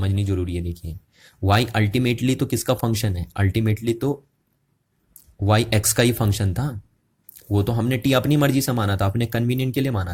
जरूरी है। देखिए y अल्टीमेटली तो किसका फंक्शन है? अल्टीमेटली तो y x का ही फंक्शन था, वो तो हमने t अपनी मर्जी से माना था, अपने कन्वीनियंट के लिए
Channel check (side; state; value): both; identical; correlation 1.00